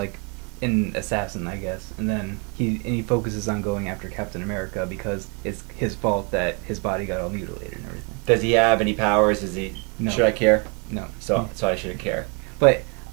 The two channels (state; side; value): quieter; left; 32.8 dB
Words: an assassin, I guess. And then he focuses on going after Captain America because it's his fault that his body got all mutilated and everything. Does he have any powers? No. Should I care? No. So I shouldn't care. But